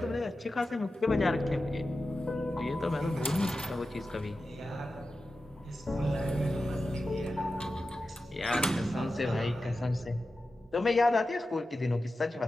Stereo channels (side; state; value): both; normal; correlation 0.93